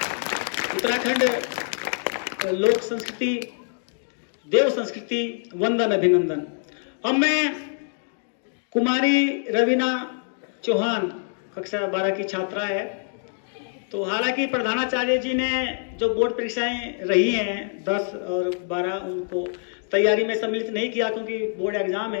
उत्तराखंड लोक संस्कृति, देव संस्कृति, वंदन, अभिनंदन। अब मैं कुमारी रवीना चौहान कक्षा 12 की छात्रा है। तो हालांकि प्रधानाचार्य जी ने जो बोर्ड परीक्षाएं रही हैं 10 और 12, उनको तैयारी में सम्मिलित नहीं किया क्योंकि बोर्ड एग्जाम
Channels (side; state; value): right; silent; digital silence